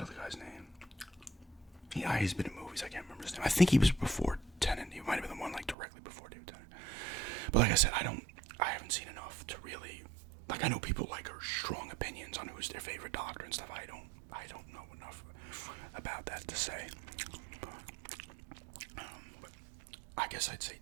other guy's name? Yeah, he's been in movies. I can't remember his name. I think he was before Tennant. He might have been the one like directly before David Tennant. But like I said, I haven't seen enough to really, like, I know people like are strong opinions on who's their favorite Doctor and stuff. I don't know enough about that to say. But I guess I'd say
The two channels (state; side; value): drops out; left; at 5.8 s